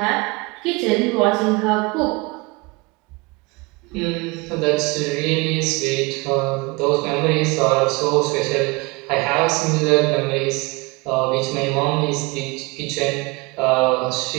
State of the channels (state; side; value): quieter; left; 26.2 dB